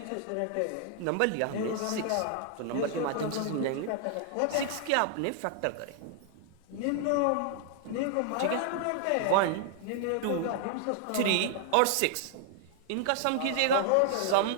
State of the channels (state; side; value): different; both; correlation 0.00